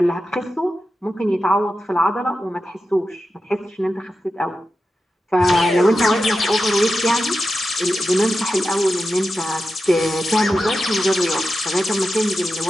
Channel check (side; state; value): both; normal; correlation 0.91